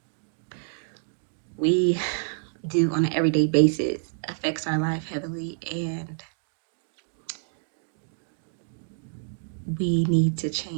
we do on an everyday basis affects our life heavily, and we need to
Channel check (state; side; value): silent; left; digital silence